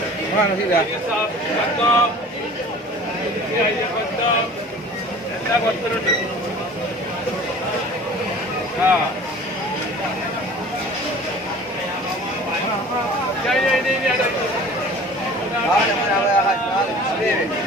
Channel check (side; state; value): both; normal; correlation 0.44